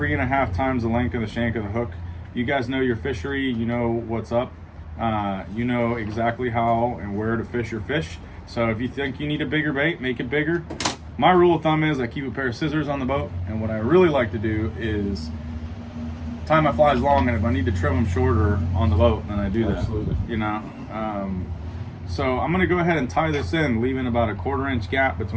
times the length of the shank of the hook. You guys know your fishery, you know what's up. You know exactly how and where to fish your fish. So if you think you need a bigger bait, make it bigger. My rule of thumb is I keep a pair of scissors on the boat, and what I really like to do is tie my flies long, and if I need to trim them shorter on the boat, then I do that. Absolutely. You know. So I'm gonna go ahead and tie this in, leaving about a 1/4 inch gap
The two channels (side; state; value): both; identical; correlation 1.00